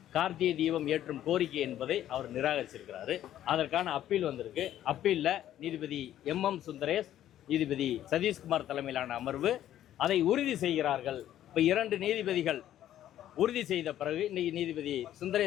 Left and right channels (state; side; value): quieter; right; 12.0 dB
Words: கார்த்திகை தீபம் ஏற்றும் கோரிக்கை என்பதை அவர் நிராகரிச்சிருக்கிறாரு. அதற்கான அப்பீல் வந்திருக்கு. அப்பீலில் நீதிபதி MM சுந்தரேஷ், நீதிபதி சதீஷ்குமார் தலைமையிலான அமர்வு அதை உறுதி செய்கிறார்கள். இப்போ 2 நீதிபதிகள் உறுதி செய்த பிறகு இன்னைக்கு நீதிபதி